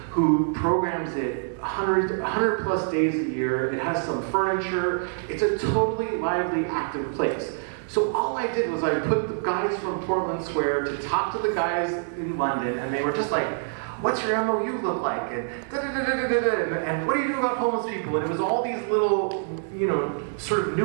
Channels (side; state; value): left; silent; digital silence